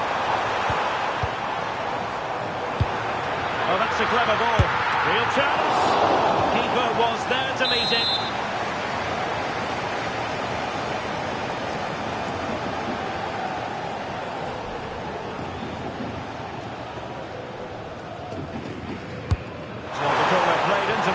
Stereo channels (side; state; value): both; identical; correlation 1.00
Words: Oh, that's a clever ball. Real chance. Keeper was there to meet it. Played into